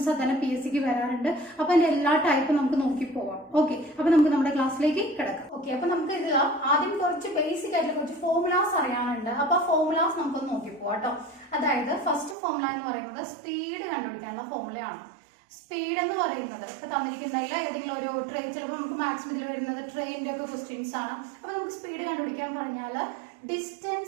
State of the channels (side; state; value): left; drops out; at 12.4 s